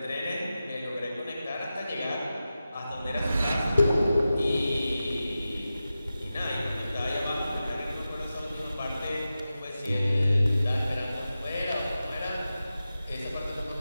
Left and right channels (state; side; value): inverted; both; correlation -0.93